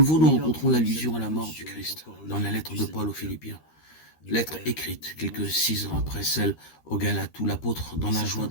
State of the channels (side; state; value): right; late; 13 ms